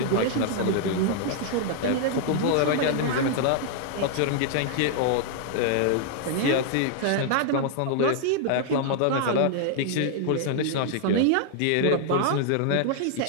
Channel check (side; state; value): both; different; correlation -0.01